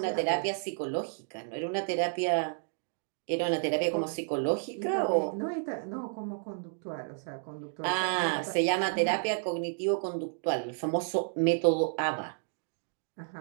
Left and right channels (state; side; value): silent; left; digital silence